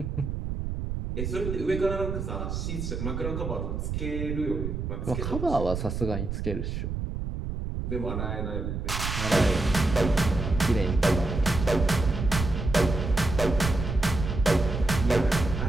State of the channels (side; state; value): right; noise; rumble, 4 dB below the sound